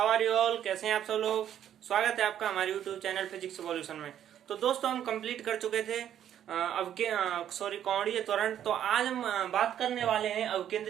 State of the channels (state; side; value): quieter; left; 10.3 dB